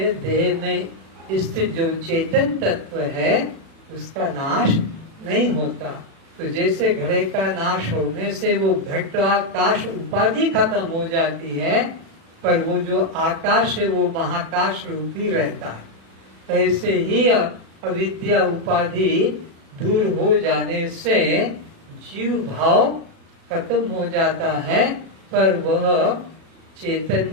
देह में स्थित जो चेतन तत्व है उसका नाश नहीं होता। तो जैसे घड़े का नाश होने से वो घट आकाश उपाधि खत्म हो जाती है, पर वो जो आकाश है वो महाकाश रूपी रहता है। ऐसे ही अविद्या उपाधि दूर हो जाने से जीव भाव खत्म हो जाता है, पर वह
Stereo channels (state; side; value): late; left; 36 ms